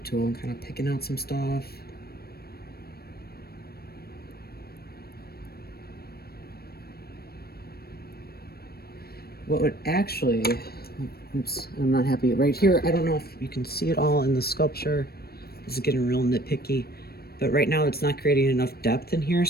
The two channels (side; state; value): right; late; 0.45 ms